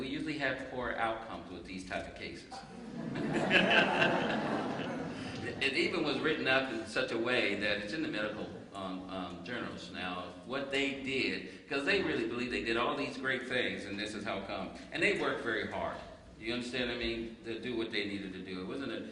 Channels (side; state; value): both; identical; correlation 1.00